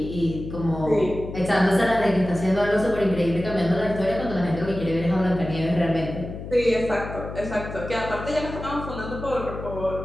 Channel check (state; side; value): noise; left; hum, 9 dB below the sound